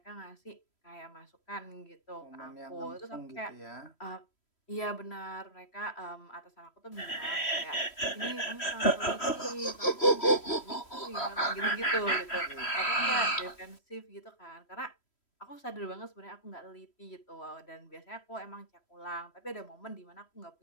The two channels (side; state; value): right; late; 3.1 ms